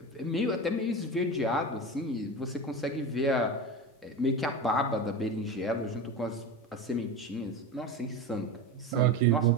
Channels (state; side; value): normal; both; correlation 0.25